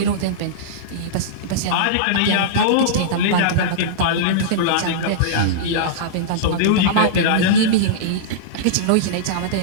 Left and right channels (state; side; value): different; both; correlation -0.03